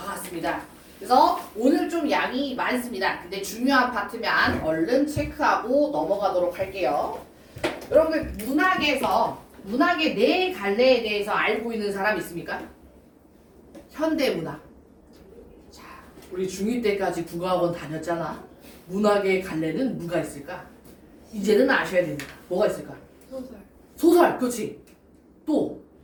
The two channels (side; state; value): both; identical; correlation 1.00